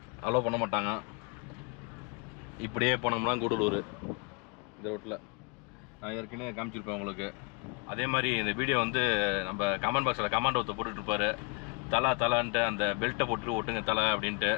அலோவ் பண்ண மாட்டாங்க. இப்படியே போனோம்னா கூடலூர் இந்த ரோட்டில் நான் ஏற்கனவே காமிச்சிருப்பேன் உங்களுக்கு. அதே மாதிரி இந்த வீடியோ வந்து நம்ம கமெண்ட் பாக்ஸில் கமெண்ட் ஒருத்தர் போட்டுட்ருப்பார், தலான்ட்டு அந்த பெல்ட்டை போட்டு ஒட்டுங்க தலை அப்படின்ட்டு.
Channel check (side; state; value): right; quieter; 30.6 dB